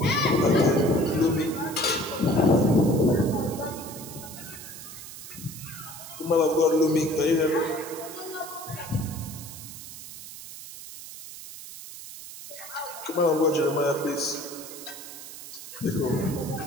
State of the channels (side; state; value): right; noise; hiss, 13 dB below the sound